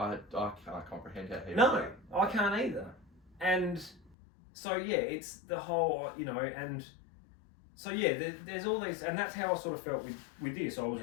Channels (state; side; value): drops out; right; at 4.1 s